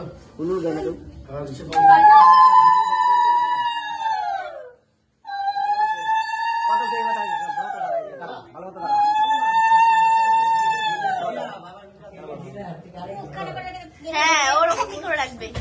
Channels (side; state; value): both; identical; correlation 1.00